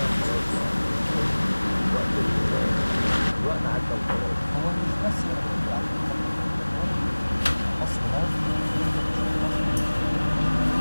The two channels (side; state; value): both; inverted; correlation -1.00